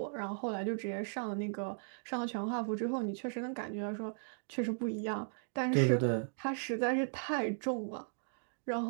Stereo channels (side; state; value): left; silent; digital silence